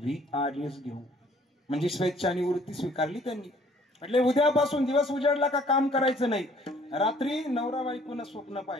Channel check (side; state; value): both; normal; correlation 0.58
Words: VRS घेऊ. म्हणजे स्वेच्छा निवृत्ती स्वीकारली त्यांनी. म्हटले उद्यापासून दिवस उजाडला का काम करायचं नाही. रात्री नवरा बायकोनं स्वप्न